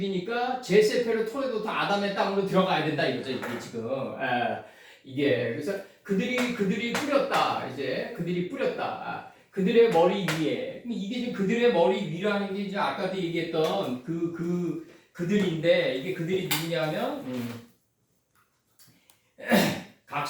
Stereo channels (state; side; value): identical; both; correlation 1.00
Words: 제세페르 토레도타 아담의 땅으로 들어가야 된다 이거죠. 이게 지금 이게 그래서 그들이 뿌렸다. 그들이 뿌렸다. 그들의 머리 위에 이게 지금 그들의 머리 위라는 게 이제 아까도 얘기했던 그들인데 이게 그들이 누구냐면 각